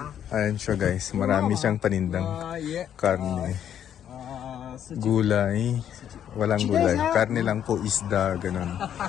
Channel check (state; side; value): quieter; right; 9.7 dB